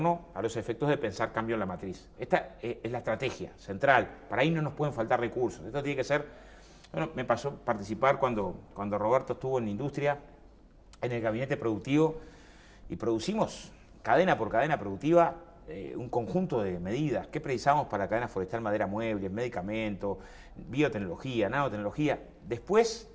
a los efectos de pensar cambio en la matriz. Esta es la estrategia central. Para ahí no nos pueden faltar recursos. Esto tiene que ser... Bueno, me pasó participar cuando Roberto estuvo en la industria, en el gabinete productivo, y producimos cadena por cadena productiva un conjunto de medidas. ¿Qué precisamos para la cadena forestal, madera, muebles, medicamentos, biotecnología, nanotecnología? Después,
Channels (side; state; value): both; identical; correlation 1.00